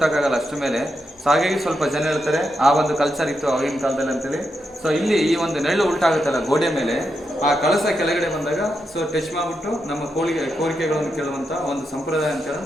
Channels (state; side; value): normal; both; correlation 0.85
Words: ಅಷ್ಟು ಮೇಲೆ. ಸೊ ಹಾಗಾಗಿ ಸ್ವಲ್ಪ ಜನ ಹೇಳ್ತಾರೆ ಆ ಒಂದು ಕಲ್ಚರ್ ಇತ್ತು ಆಗಿನ ಕಾಲದಲ್ಲಿ ಅಂತೇಳಿ. ಸೊ ಇಲ್ಲಿ ಈ ಒಂದು ನೆರಳು ಉಲ್ಟಾಗುತ್ತಲ್ಲ ಗೋಡೆ ಮೇಲೆ, ಆ ಕಳಸ ಕೆಳಗಡೆ ಬಂದಾಗ ಸೊ ಟಚ್ ಮಾಡಿಬಿಟ್ಟು ನಮ್ಮ ಕೋರಿಕೆಗಳನ್ನು ಕೇಳುವಂಥ ಒಂದು ಸಂಪ್ರದಾಯ